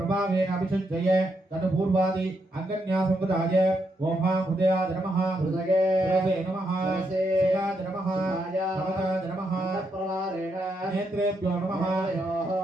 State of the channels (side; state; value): both; normal; correlation 0.80